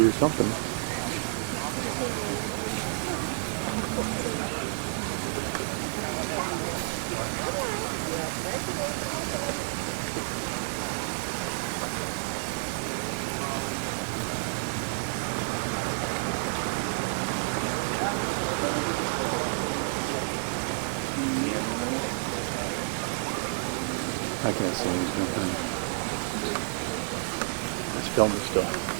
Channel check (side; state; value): left; silent; 58 dB below the other